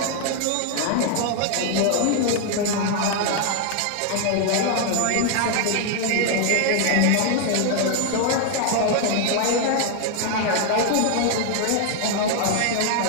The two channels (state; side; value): different; both; correlation 0.00